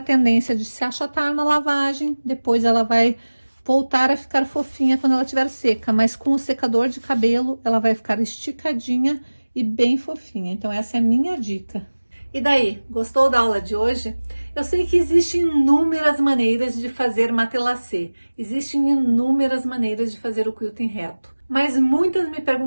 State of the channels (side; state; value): both; inverted; correlation -1.00